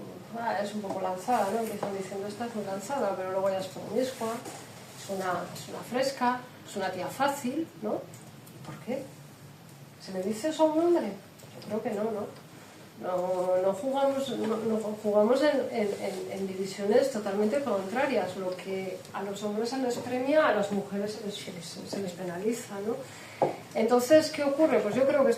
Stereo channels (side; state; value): both; identical; correlation 1.00